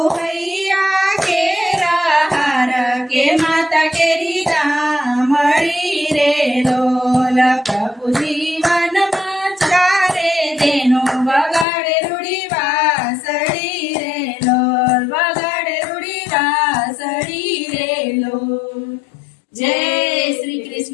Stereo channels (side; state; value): right; drops out; at 11.7 s